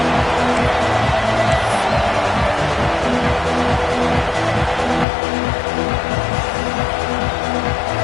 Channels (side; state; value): right; drops out; at 5.1 s